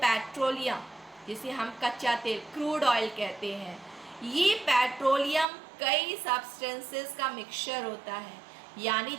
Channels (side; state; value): left; drops out; at 5.5 s